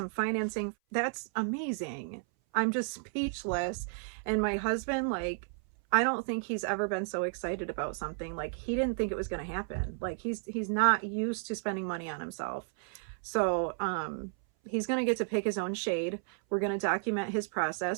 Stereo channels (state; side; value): silent; left; 56 dB below the other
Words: financing. That's amazing. I'm just speechless. And my husband, like, I don't think he's ever been so excited about something. Like, he didn't think it was going to happen. Like, he's not used to spending money on himself. So he's going to get to pick his own shade. We're going to document his